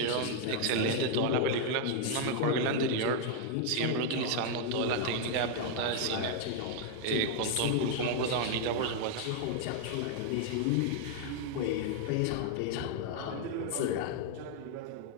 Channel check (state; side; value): different; both; correlation 0.00